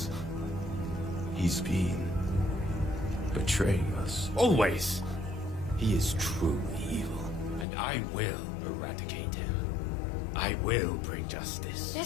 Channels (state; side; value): drops out; right; at 7.7 s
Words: He's been betraying us. Always! He is true evil, and I will eradicate him. I will bring justice.